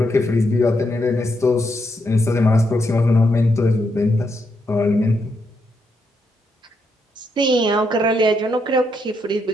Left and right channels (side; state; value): both; normal; correlation 0.79